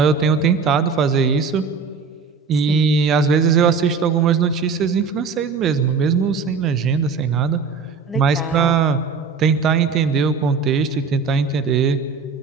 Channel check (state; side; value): quieter; left; 5.2 dB